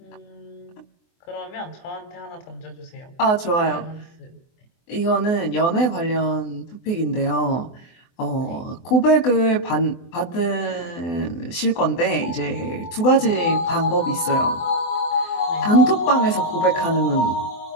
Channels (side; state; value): right; late; 24 ms